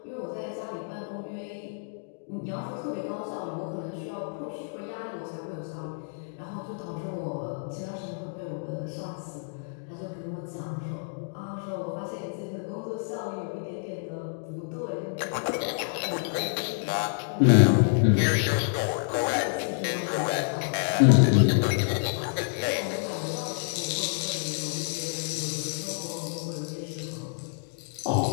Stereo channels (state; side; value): silent; right; digital silence